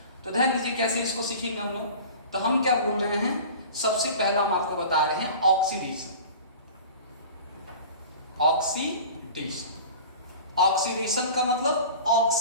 तो ध्यान दीजिए कैसे इसको सीखेंगे हम लोग। तो हम क्या बोल रहे हैं, सबसे पहला हम आपको बता रहे हैं ऑक्सीडेशन। ऑक्सीडेशन, ऑक्सीडेशन का मतलब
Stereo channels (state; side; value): inverted; both; correlation -0.38